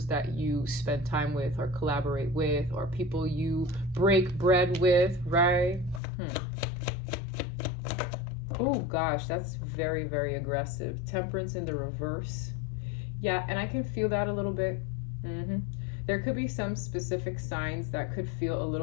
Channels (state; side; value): drops out; right; at 6.0 s